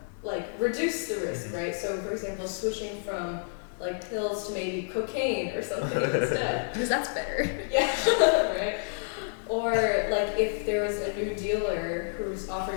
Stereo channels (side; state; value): right; silent; digital silence